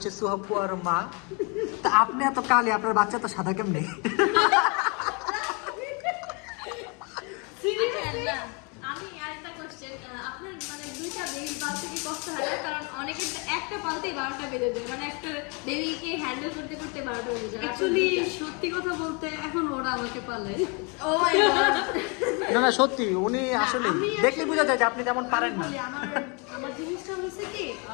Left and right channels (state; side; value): quieter; right; 32.6 dB